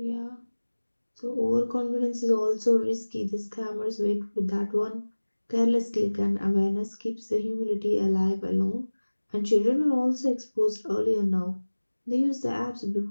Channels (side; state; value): both; inverted; correlation -1.00